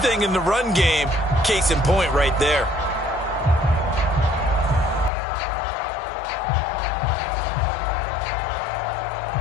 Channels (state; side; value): drops out; right; at 5.1 s